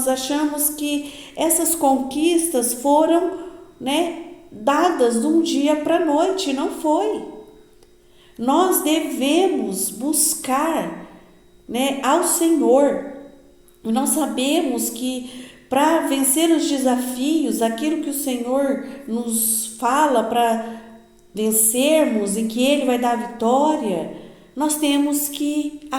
achamos que essas conquistas foram, né, dadas de um dia para a noite. Não foi. Nós devemos buscar, né, ao Senhor. Nós sabemos que para vencer os desafios, aquilo que o Senhor nos fala para vencermos e que Ele vai dar a vitória, nós temos que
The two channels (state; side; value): identical; both; correlation 1.00